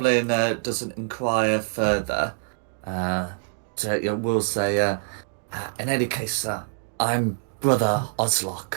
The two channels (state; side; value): silent; left; digital silence